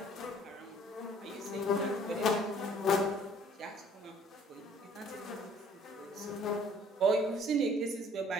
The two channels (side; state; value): both; normal; correlation 0.56